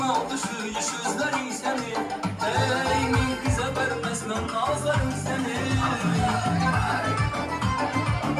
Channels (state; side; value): identical; both; correlation 1.00